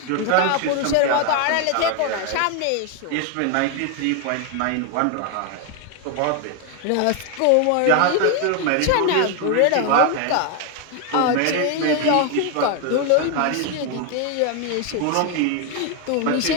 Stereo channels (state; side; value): different; both; correlation 0.01